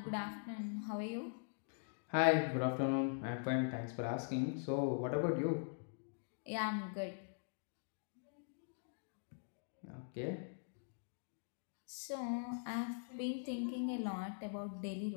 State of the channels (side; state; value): right; silent; digital silence